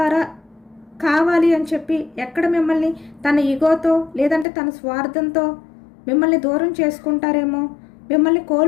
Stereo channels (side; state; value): right; drops out; at 4.5 s